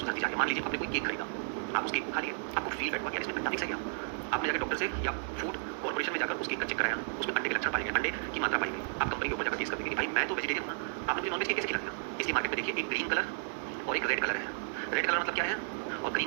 जा रही है। मान लीजिए आपने कोई केक खरीदा, आप उस केक को खा लिए, आपको फील बैठ हुआ कि इसमें अंडा मिक्स है क्या? आपने जाकर डॉक्टर से या फूड कॉर्पोरेशन में जाकर उस केक का चेक कराया, उसमें अंडे के लक्षण पाए गए, अंडे की मात्रा पाई गई। आप कंपनी के ऊपर जाकर केस करेंगे कि भाई मैं तो वेजिटेरियन हूं, आपने मुझे नॉनवेज केक कैसे खिला दिया? इसलिए मार्केट में देखिए एक ग्रीन कलर और एक रेड कलर है। रेड कलर मतलब क्या है और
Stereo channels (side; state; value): left; silent; digital silence